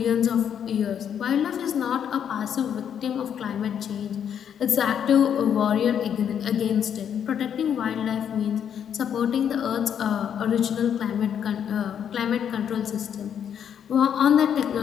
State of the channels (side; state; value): right; quieter; 8.6 dB